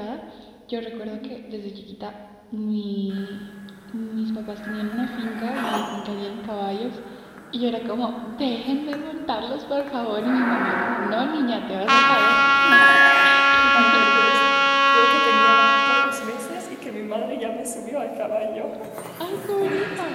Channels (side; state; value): both; identical; correlation 1.00